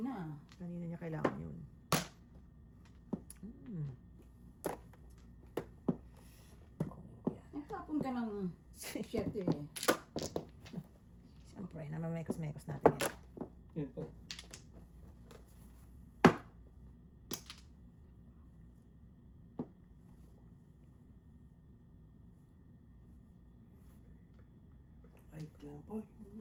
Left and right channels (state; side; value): identical; both; correlation 1.00